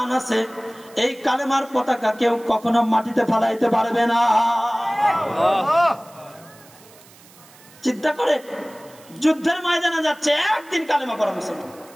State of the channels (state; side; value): noise; right; hiss, 24 dB below the sound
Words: আছে এই কালেমার পতাকা কেউ কখনো মাটিতে ফেলাইতে পারবে না। চিন্তা করে, যুদ্ধের ময়দানে যাচ্ছে, একদিন কালেমা পড়া মুসলমান,